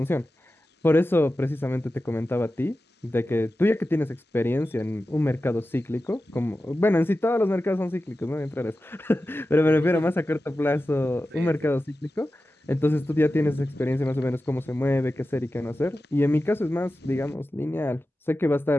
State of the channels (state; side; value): normal; both; correlation 0.93